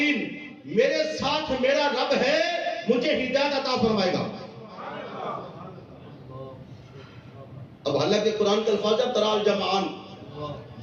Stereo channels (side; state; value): both; identical; correlation 1.00